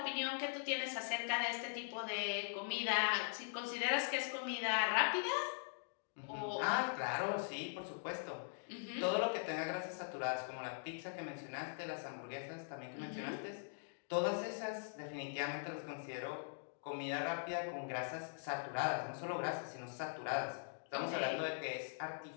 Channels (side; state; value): right; silent; digital silence